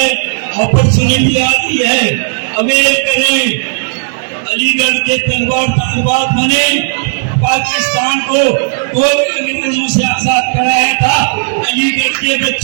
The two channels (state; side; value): silent; left; digital silence